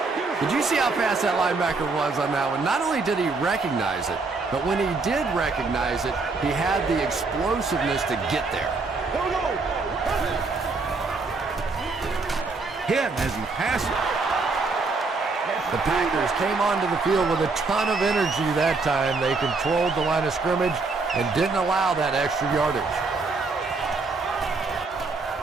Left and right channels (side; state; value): left; quieter; 4.0 dB